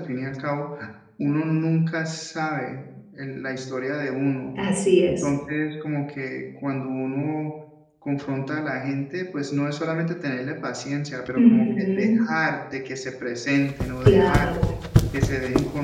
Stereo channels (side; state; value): both; identical; correlation 1.00